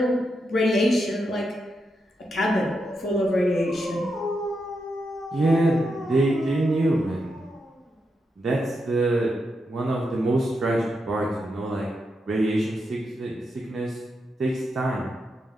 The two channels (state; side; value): normal; both; correlation 0.84